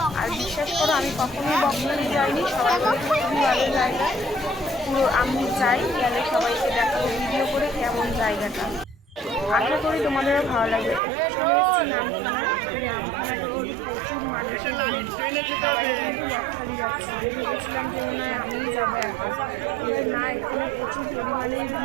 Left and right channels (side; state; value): left; drops out; at 11.0 s